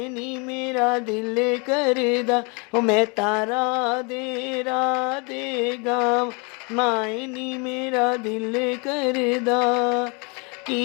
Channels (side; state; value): right; quieter; 32.6 dB